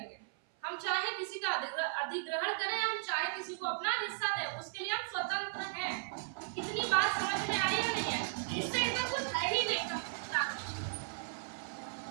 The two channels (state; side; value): silent; left; 54 dB below the other